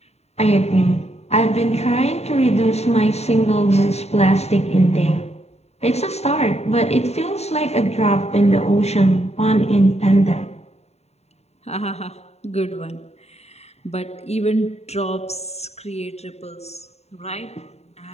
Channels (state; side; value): late; right; 0.31 ms